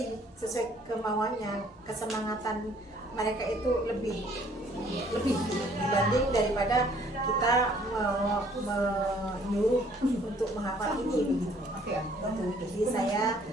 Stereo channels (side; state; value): both; normal; correlation 0.60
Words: sesuai kemauannya, kesemangatan mereka itu lebih dibanding daripada kita menyuruh untuk menghafal ini begitu. Jadi saya